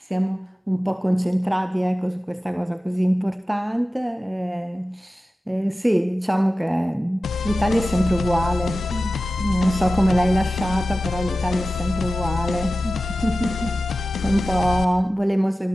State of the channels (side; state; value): both; normal; correlation 0.94